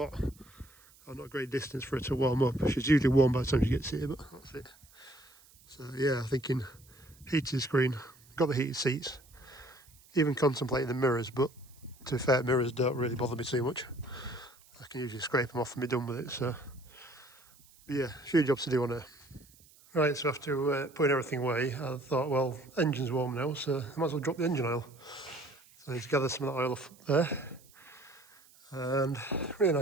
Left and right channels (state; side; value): noise; right; hiss, 26 dB below the sound